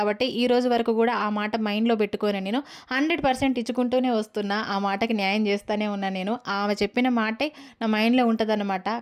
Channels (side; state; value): both; identical; correlation 1.00